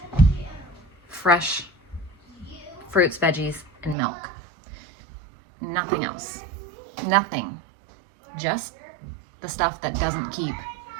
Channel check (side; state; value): left; drops out; at 4.0 s